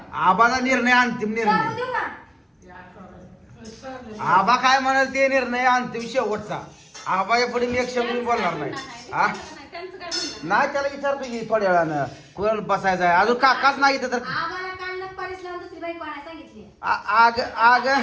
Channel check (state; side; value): identical; both; correlation 1.00